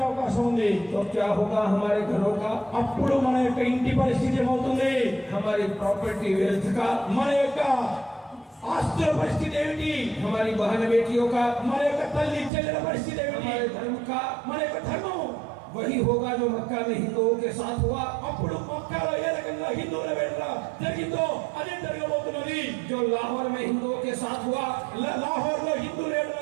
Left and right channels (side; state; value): left; drops out; at 12.5 s